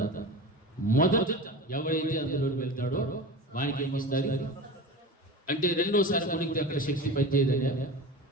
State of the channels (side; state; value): both; normal; correlation 0.30